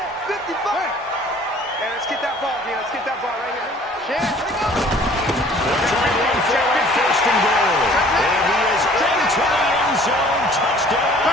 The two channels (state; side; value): normal; both; correlation 0.53